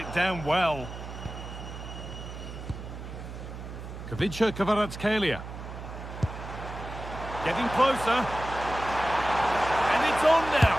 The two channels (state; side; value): noise; right; hum, 10 dB below the sound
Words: down well. Kavica Kvaratskhelia. Getting closer. And it's on now.